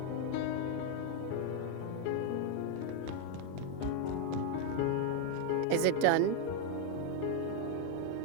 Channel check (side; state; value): both; different; correlation 0.00